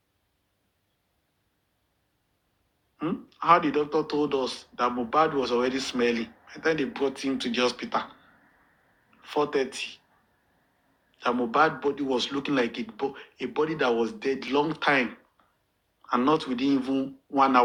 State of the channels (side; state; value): both; identical; correlation 1.00